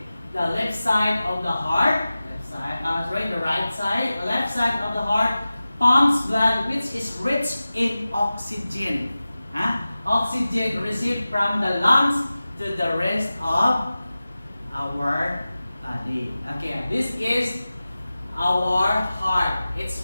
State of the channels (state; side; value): inverted; both; correlation -0.96